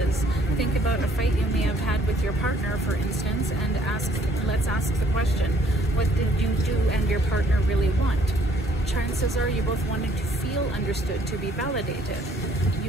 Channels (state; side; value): normal; both; correlation 0.62